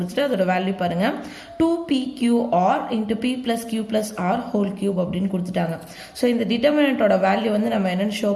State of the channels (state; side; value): identical; both; correlation 1.00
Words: அதோட value பாருங்க 2PQR into P plus Q plus R whole cube அப்படின்னு கொடுத்துட்டாங்க. So இந்த determinant ஓட value வந்து நம்ம என்னன்னு ஷோ